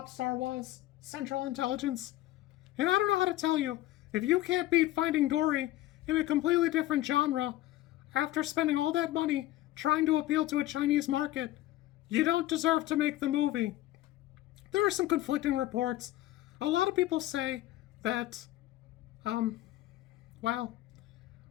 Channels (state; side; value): quieter; right; 15.8 dB